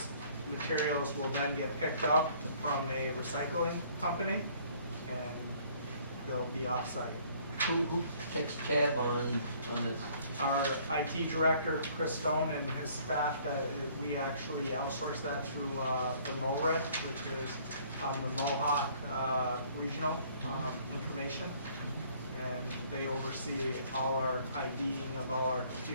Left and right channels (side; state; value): both; inverted; correlation -0.59